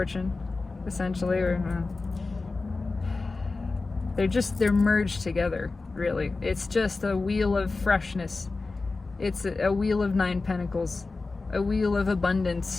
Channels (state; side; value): quieter; right; 3.7 dB